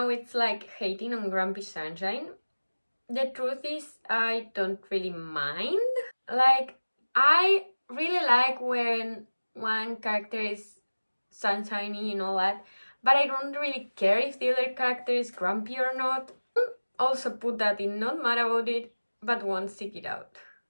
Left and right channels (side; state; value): both; inverted; correlation -1.00